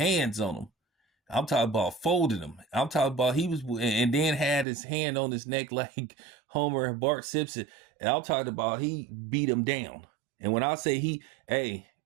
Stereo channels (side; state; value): left; drops out; at 4.7 s